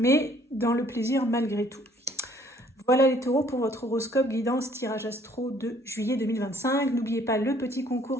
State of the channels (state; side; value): normal; both; correlation 0.60